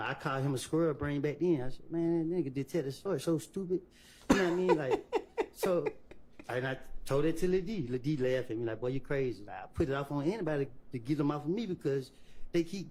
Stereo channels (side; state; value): both; identical; correlation 1.00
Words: I called him a squirrel brain back then. I said, man, that nigga detective story so stupid. You know what I mean? Like, so, and I told it to Lil D. Lil D laughed at me like, boy, you crazy. Like, I put it off on anybody to get them off of me because they